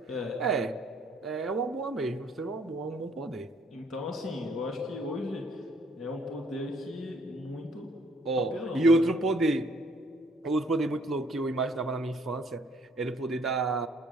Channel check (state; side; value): normal; both; correlation 0.63